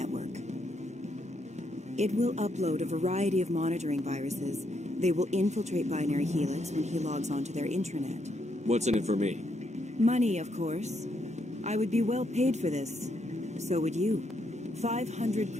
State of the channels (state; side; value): normal; both; correlation 0.77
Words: It will upload a variety of monitoring viruses. They will infiltrate Binary Helix when he logs onto their intranet. What's in it for me? Money, of course. I would be well paid for this. So would you. 500